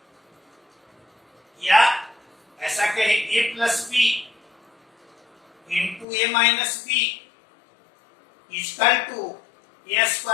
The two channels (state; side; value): drops out; right; at 6.1 s